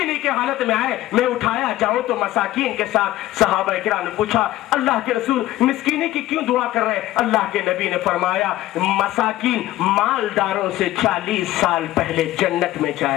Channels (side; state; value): right; quieter; 15.5 dB